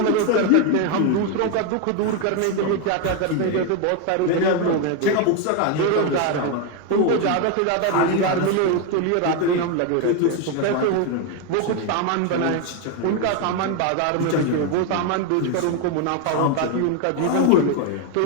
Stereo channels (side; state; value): both; different; correlation 0.02